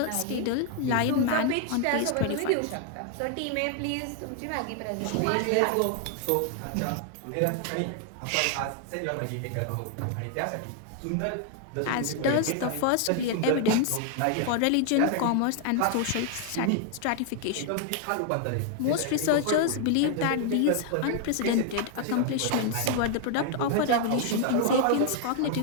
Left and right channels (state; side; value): different; both; correlation 0.00